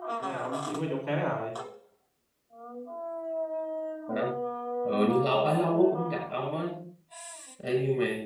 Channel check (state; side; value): identical; both; correlation 1.00